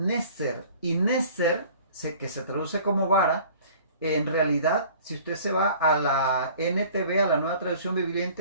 y neser, que se traduce como vara, en realidad, si usted se va a la NTV, a la Nueva Traducción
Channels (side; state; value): both; inverted; correlation -0.49